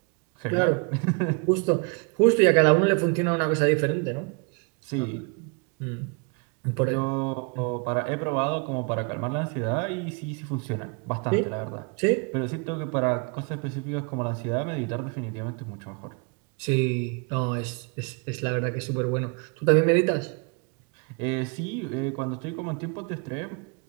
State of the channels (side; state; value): left; quieter; 34.6 dB